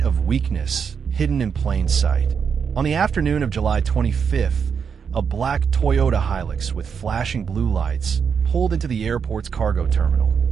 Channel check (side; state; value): left; quieter; 6.6 dB